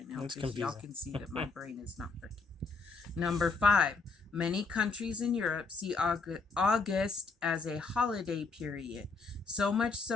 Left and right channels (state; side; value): quieter; right; 4.3 dB